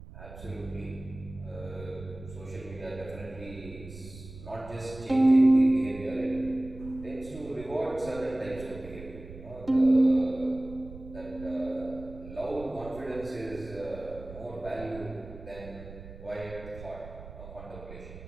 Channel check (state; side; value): noise; right; rumble, 15 dB below the sound